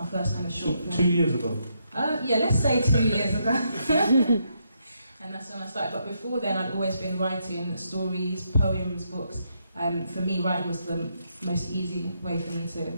first kind of short film. 2 years ago? Yeah, let's say 2 years ago. And that's when I started. But before then, I'd always been writing stories, poems, books. For me, writing was the most easy way for me to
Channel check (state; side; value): inverted; both; correlation -0.78